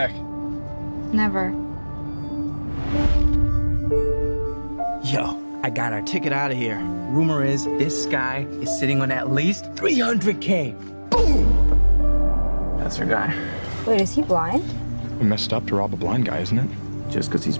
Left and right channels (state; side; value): inverted; both; correlation -1.00